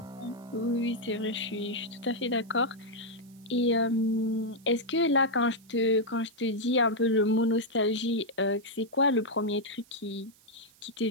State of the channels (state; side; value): noise; right; hiss, 28 dB below the sound